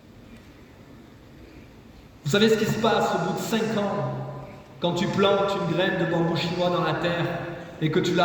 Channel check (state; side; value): identical; both; correlation 1.00